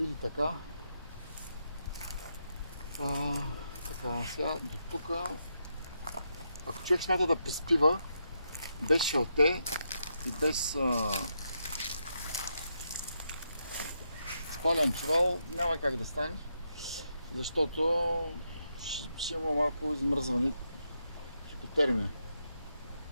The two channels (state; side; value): inverted; both; correlation -0.82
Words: така. Така, сега до тук. Ако човек смята да приспива без шалте и без спален чувал, няма как да стане, защото ще има малко измръзване, хипотермия